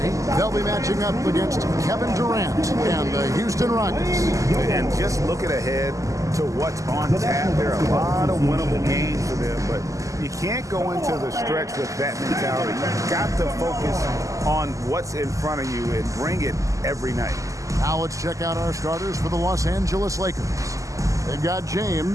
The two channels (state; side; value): late; left; 0.16 ms